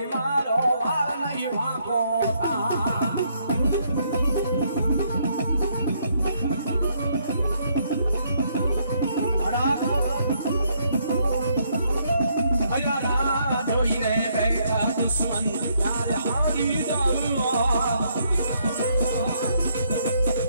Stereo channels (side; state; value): both; inverted; correlation -0.72